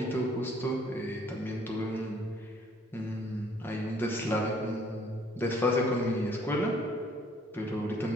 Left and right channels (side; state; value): both; normal; correlation 0.61